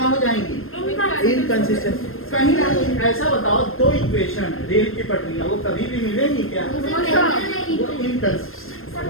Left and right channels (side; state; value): right; late; 0.60 ms